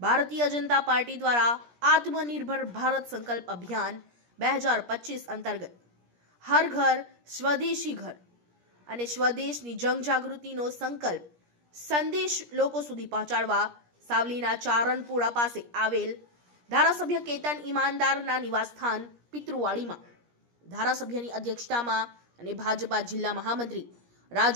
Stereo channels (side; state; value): left; late; 17 ms